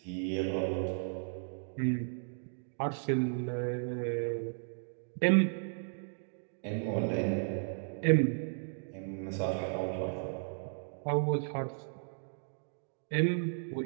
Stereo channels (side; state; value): left; silent; digital silence